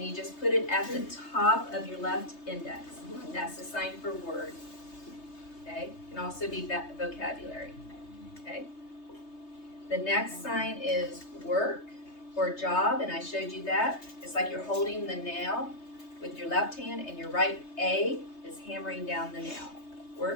you just put it at the top of your left index. That's the sign for word. Okay, it can also be vocabulary. Okay. The next sign is work or job, and I showed you that. It's like you're holding the nail with your left hand, and your right A is hammering down the nail.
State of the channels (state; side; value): late; right; 3.3 ms